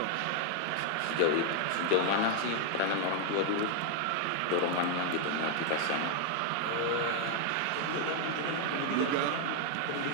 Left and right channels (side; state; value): both; different; correlation 0.00